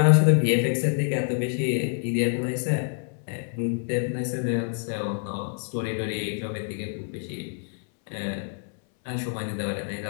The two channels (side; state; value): right; silent; 60 dB below the other